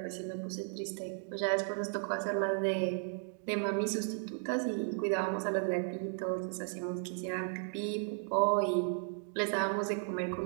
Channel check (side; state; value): left; silent; 54 dB below the other